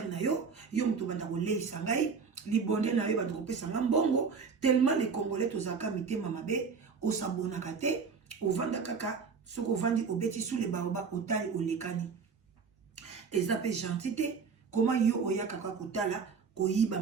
na yo muto banda ko leisa ngai libonde na yo banda ko pesa mbongo tellement les congolais tozaka mitema mabe o s'abonna kate o vanda kaka soko vandi obeti sous les baoba otali olekani ezape gentité comment yo oya kaka kotala koyiba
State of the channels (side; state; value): left; quieter; 5.5 dB